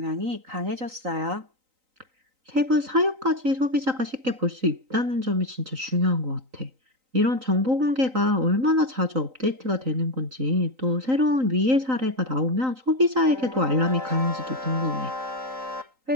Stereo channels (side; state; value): left; late; 3.9 ms